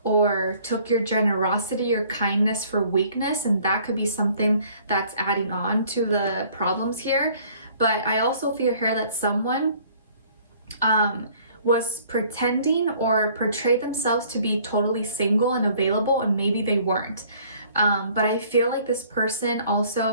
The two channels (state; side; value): inverted; both; correlation -0.57